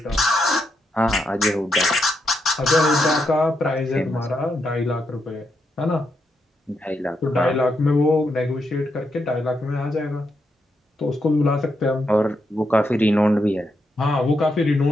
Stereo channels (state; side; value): normal; both; correlation 0.82